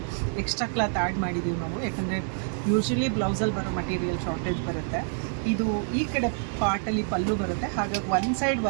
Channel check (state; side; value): silent; left; 57 dB below the other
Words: ಎಕ್ಸ್ಟ್ರಾ ಕ್ಲಾತ್ ಆ್ಯಡ್ ಮಾಡಿದ್ದೀವಿ ನಾವು, ಯಾಕಂದರೆ ಯೂಶ್ವಲಿ ಬ್ಲೌಸಲ್ಲಿ ಬರೋ ಮಟೀರಿಯಲ್ ಶಾರ್ಟೇಜ್ ಬರುತ್ತೆ. ಇದು ಈ ಕಡೆ ಪಾರ್ಟಲ್ಲಿ ಪಲ್ಲು ಬರುತ್ತೆ, ಹಾಗಾಗಿ ಒನ್ ಸೈಡ್